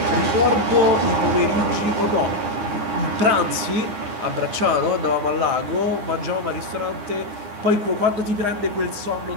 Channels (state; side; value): late; left; 9.8 ms